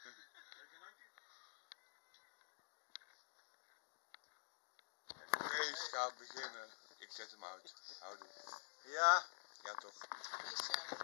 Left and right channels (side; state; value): right; silent; digital silence